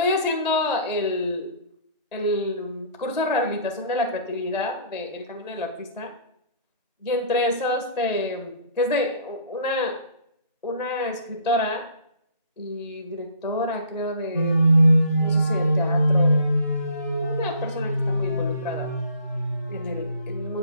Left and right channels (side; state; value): both; inverted; correlation -0.53